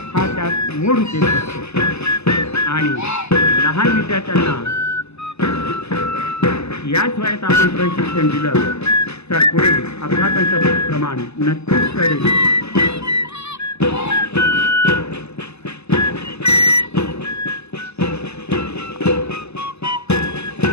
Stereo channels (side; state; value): right; late; 0.80 ms